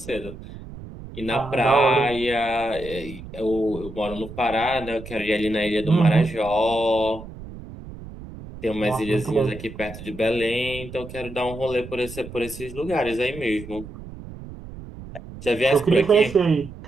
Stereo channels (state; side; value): noise; right; rumble, 13 dB below the sound